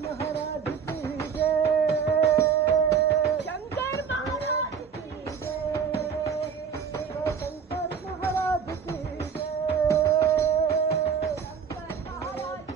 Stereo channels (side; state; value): left; quieter; 6.8 dB